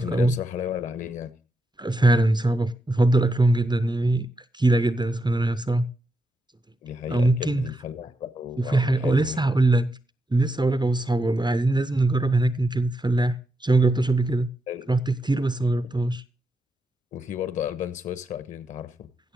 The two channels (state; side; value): normal; both; correlation 0.84